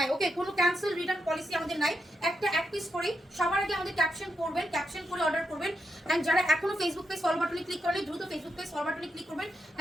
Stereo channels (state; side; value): normal; both; correlation 0.83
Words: ওকে, কোনো ক্যান্সেল রিটার্ন পলিসি আমাদের নাই। একটা এক পিস করে সবার আগে আমাদের ক্যাপশন করবেন, ক্যাপশন করে অর্ডার করবেন। এন্ড যারা এখনো ফেসবুক পেজ ফলো বাটনে ক্লিক করেন, দ্রুত ফেসবুক পেজ ফলো বাটনে ক্লিক করবেন।